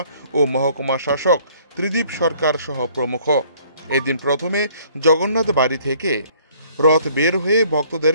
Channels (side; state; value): both; inverted; correlation -0.60